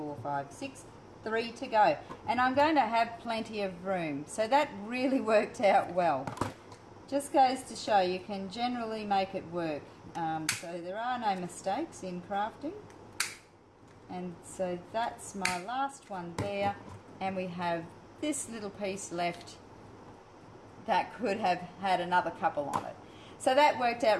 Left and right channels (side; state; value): both; identical; correlation 1.00